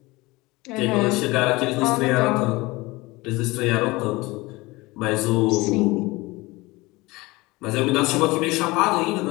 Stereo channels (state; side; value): quieter; right; 22.1 dB